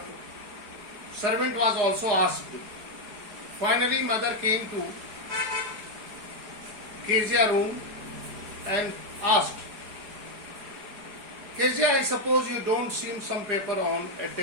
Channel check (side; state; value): left; late; 5.0 ms